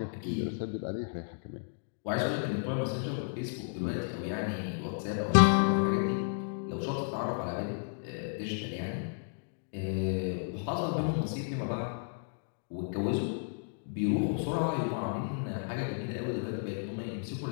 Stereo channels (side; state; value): right; silent; digital silence